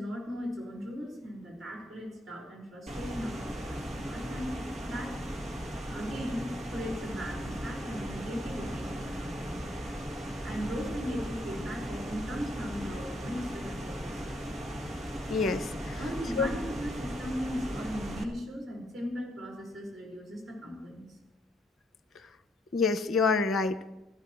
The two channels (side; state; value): both; normal; correlation 0.73